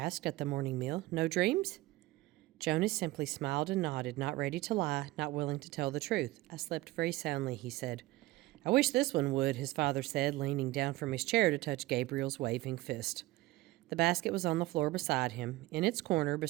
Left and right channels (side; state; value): left; quieter; 18.8 dB